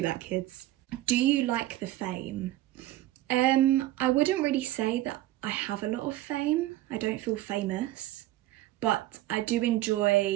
that, kids. Do you like the fame? I wouldn't really say that I have a lot of fame. I don't feel famous, but I do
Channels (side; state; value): left; quieter; 15.5 dB